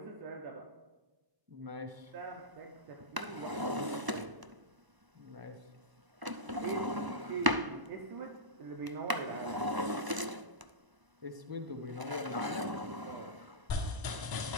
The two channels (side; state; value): left; late; 1.0 ms